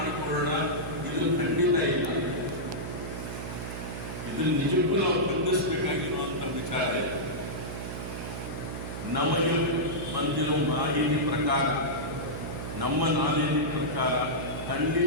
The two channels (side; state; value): right; noise; hum, 7 dB below the sound